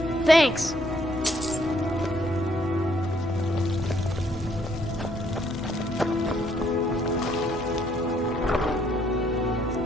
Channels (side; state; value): both; normal; correlation 0.68